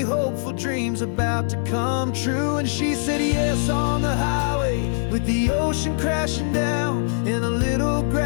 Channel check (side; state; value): right; silent; digital silence